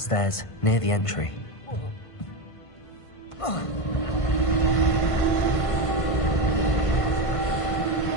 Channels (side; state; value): right; late; 1.5 ms